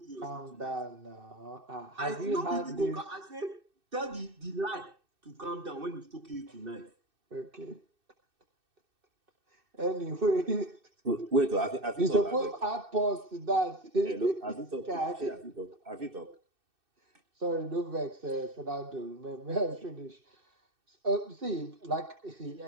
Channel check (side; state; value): left; late; 2.6 ms